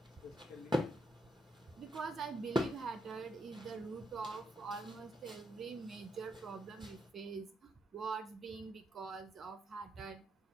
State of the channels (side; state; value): both; normal; correlation 0.79